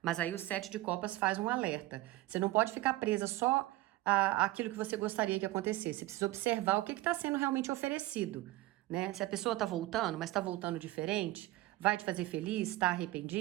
aí o 7 de copas faz um alerta. Você não pode ficar presa só àquilo que você gostaria que acontecesse. Você precisa observar o que está sendo realmente oferecido, né? Se a pessoa está voltando, mas está voltando diferente, vai te fazer feliz, está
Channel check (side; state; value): left; quieter; 17.9 dB